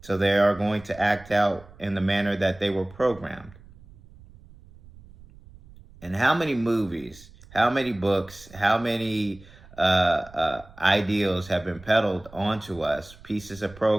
So they are going to act out in the manner that they were programmed. And how many movies, how many books, how many ideals have been peddled onto us, pieces of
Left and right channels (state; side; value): noise; right; rumble, 22 dB below the sound